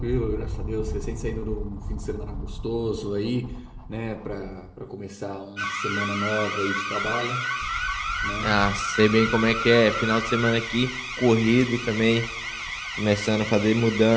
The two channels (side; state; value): both; identical; correlation 1.00